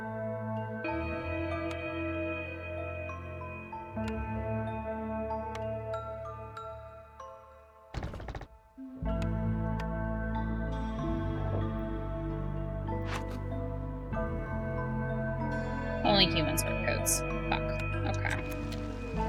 Only humans wear coats. Fuck. Okay.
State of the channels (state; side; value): identical; both; correlation 1.00